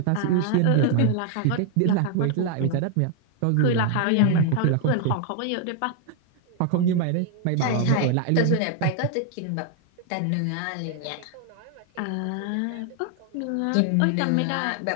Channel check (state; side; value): different; both; correlation 0.00